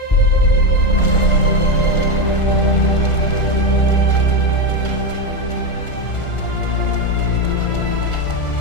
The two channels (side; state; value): right; late; 1.4 ms